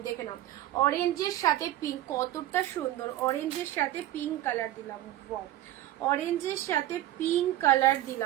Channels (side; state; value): left; quieter; 14.0 dB